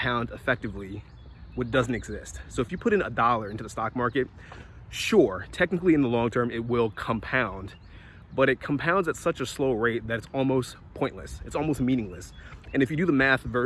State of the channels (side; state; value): both; identical; correlation 1.00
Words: effectively what doesn't exist. So if you put in $1 into the stock market, sure, technically in the long term, it will compound, but it compounds at such a slow rate that it's almost pointless. It's almost meaningless. And if you do the math